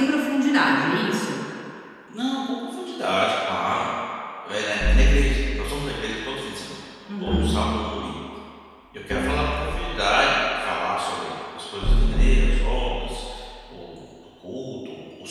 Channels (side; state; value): both; identical; correlation 1.00